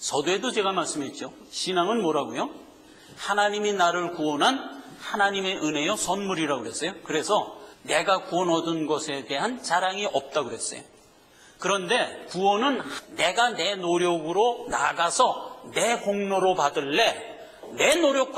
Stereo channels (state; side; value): identical; both; correlation 1.00